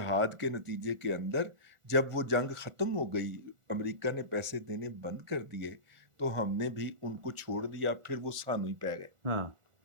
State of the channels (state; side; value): late; left; 1.4 ms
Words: کے نتیجے کے اندر جب وہ جنگ ختم ہو گئی، امریکہ نے پیسے دینے بند کر دیے، تو ہم نے بھی ان کو چھوڑ دیا. پھر وہ سانو ہی پہ گئے.